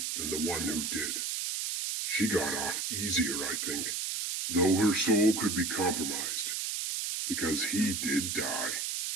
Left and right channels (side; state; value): right; noise; hiss, 1 dB below the sound